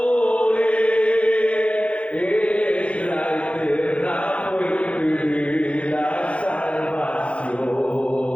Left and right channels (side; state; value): right; late; 0.062 ms